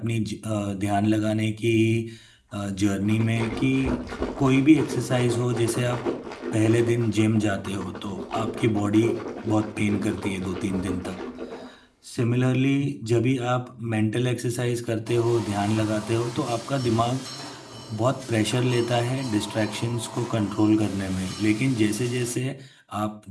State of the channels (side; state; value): both; identical; correlation 1.00